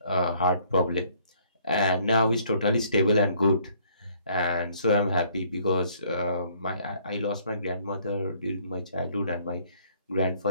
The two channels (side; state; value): both; inverted; correlation -0.63